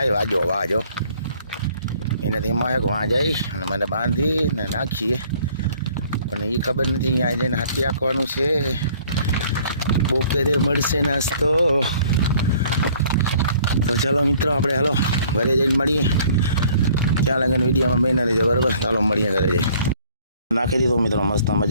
વાજો એનાથી એમાં એક વાં જાય અને મને બાંધીને નાખીએ પણ એ ખબર નથી અહીંયા જઈને હાથી આંકવાનું છે. બપોરે મળશે નાસ્તો. તો ચાલો મિત્રો આપણે હાલો ઘરે જઈને મળીએ. ત્યાં લગન વિડીયોમાં બહેના રહેજો બરાબર. ચાલો મળીએ ઘરે જઈ. નાખી દીધું મિત્રો મસ્ત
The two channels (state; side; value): inverted; both; correlation -0.57